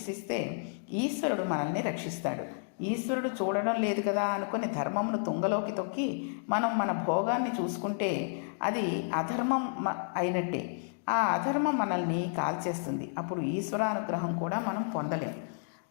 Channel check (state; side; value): silent; right; digital silence